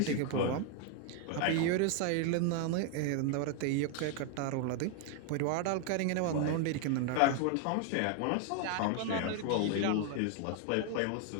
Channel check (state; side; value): different; both; correlation 0.00